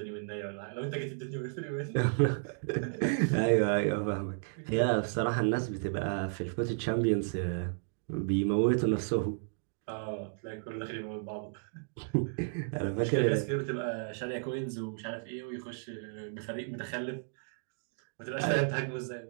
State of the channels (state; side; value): silent; left; digital silence